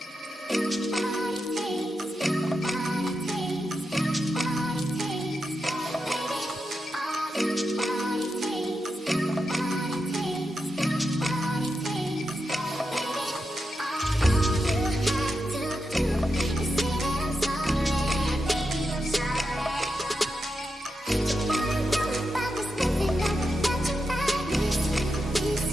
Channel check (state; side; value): normal; both; correlation 0.87